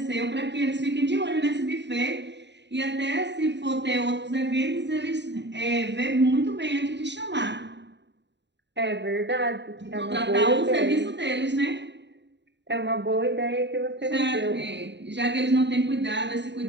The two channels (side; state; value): left; late; 0.52 ms